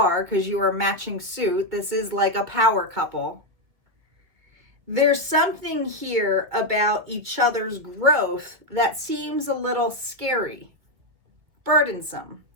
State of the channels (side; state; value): left; late; 2.3 ms